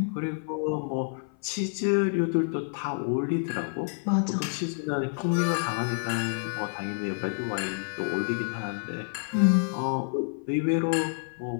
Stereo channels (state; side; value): silent; right; 56 dB below the other